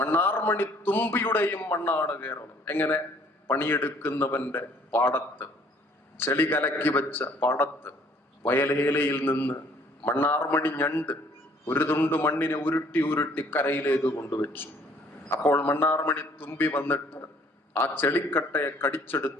തുമ്പിയുടെയും മണ്ണാണ് കേരളം. എങ്ങനെ? പണിയെടുക്കുന്നവന്റെ പാടത്ത്, ചെളി കലക്കി വെച്ച പാടത്ത് വയലേലയിൽ നിന്ന് മണ്ണാർമണി ഞണ്ട് ഒരു തുണ്ട് മണ്ണിനെ ഉരുട്ടി ഉരുട്ടി കരയിലേക്ക് കൊണ്ടുവച്ചു. അപ്പോൾ മണ്ണാർമണി തുമ്പി വന്നിട്ട് ആ ചെളിക്കട്ടയെ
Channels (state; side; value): normal; both; correlation 0.59